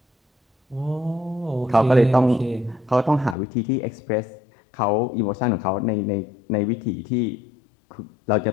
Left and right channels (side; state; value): right; drops out; at 3.4 s